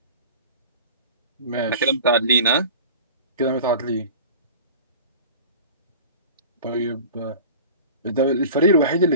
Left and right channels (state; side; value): inverted; both; correlation -0.38